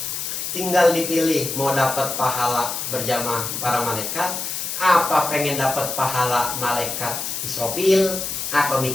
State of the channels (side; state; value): left; noise; hiss, 4 dB below the sound